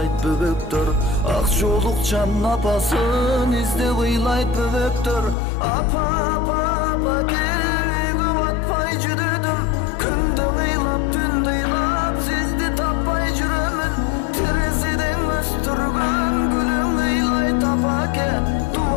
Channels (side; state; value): right; drops out; at 5.4 s